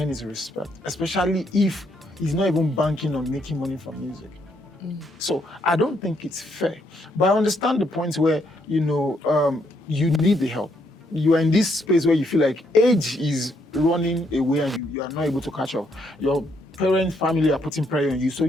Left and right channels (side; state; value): both; normal; correlation 0.73